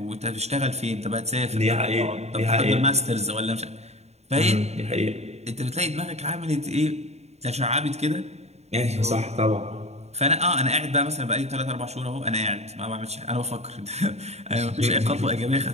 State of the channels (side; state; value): left; late; 0.31 ms